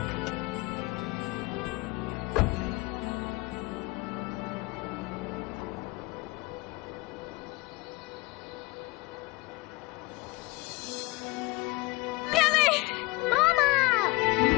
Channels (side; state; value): right; quieter; 23.8 dB